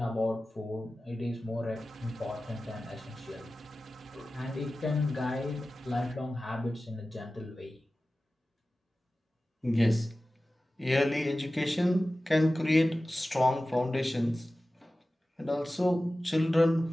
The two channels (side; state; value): both; normal; correlation 0.96